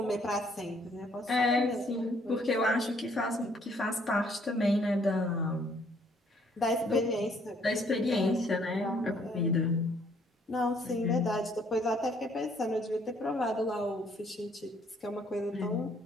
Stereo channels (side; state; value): both; normal; correlation 0.65